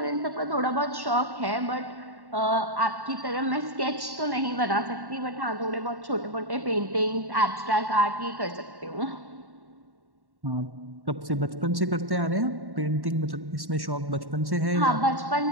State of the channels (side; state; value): left; late; 1.1 ms